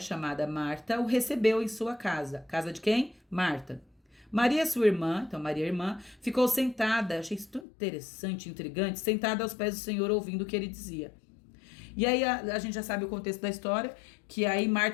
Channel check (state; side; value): drops out; right; at 7.7 s